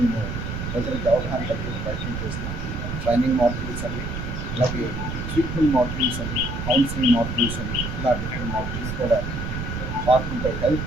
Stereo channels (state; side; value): noise; right; rumble, 5 dB below the sound